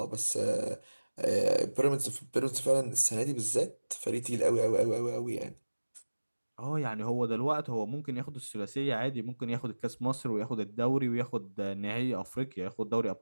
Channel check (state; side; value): inverted; both; correlation -1.00